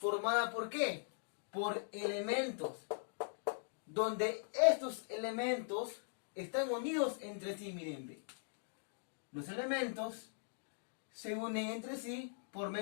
por qué? Por elementos, donde estos elementos están unidos entre sí, miren, ve. Los elementos se unen entre sí por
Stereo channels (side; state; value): right; silent; digital silence